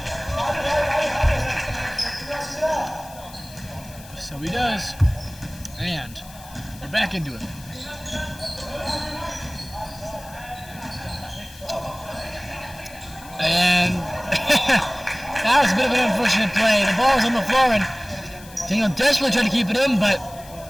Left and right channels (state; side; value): noise; left; hiss, 20 dB below the sound